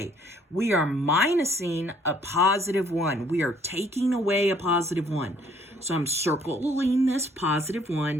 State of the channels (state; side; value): normal; both; correlation 0.62